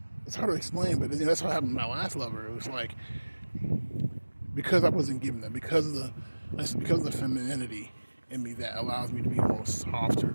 it's hard to explain, but that's what happened to my last lover. It was like, because I wasn't given that, because of the femininity in me that allows me to be more softer,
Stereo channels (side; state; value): both; inverted; correlation -1.00